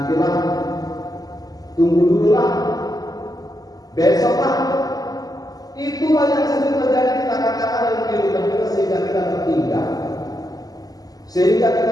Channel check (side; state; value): right; late; 0.18 ms